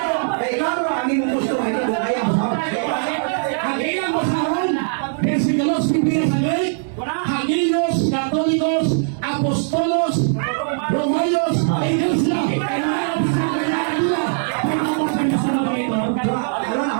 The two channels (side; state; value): left; silent; digital silence